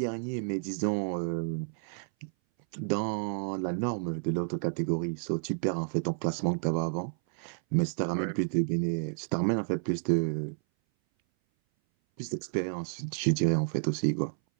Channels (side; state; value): left; silent; 57 dB below the other